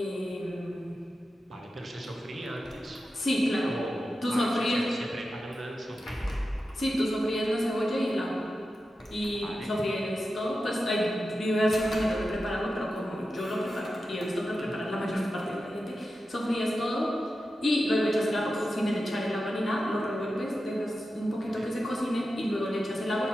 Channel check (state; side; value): normal; both; correlation 0.91